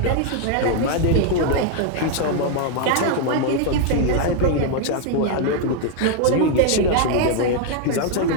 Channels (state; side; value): different; both; correlation 0.00